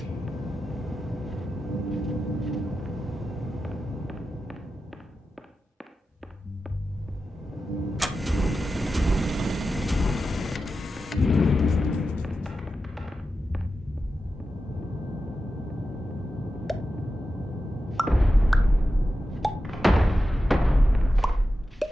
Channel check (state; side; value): normal; both; correlation 0.91